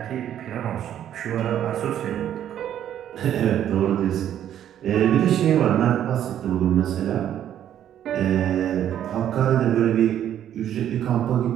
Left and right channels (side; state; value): left; quieter; 10.6 dB